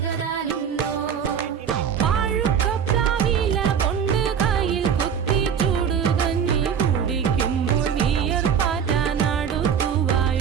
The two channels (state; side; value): quieter; left; 7.7 dB